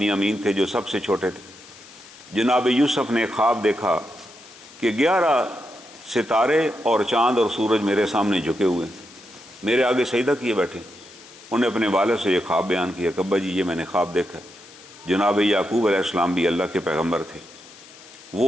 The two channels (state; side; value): noise; left; hiss, 21 dB below the sound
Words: تھے جو سب سے چھوٹے تھے۔ جناب یوسف نے ایک خواب دیکھا کہ 11 ستارے اور چاند اور سورج میرے سامنے جھکے ہوئے، میرے آگے سجدہ کیے بیٹھے۔ انہیں اپنے والد سے یہ خواب بیان کیا کہ ابا جی یہ میں نے خواب دیکھا۔ جناب یعقوب علیہ السلام بھی اللہ کے پیغمبر تھے،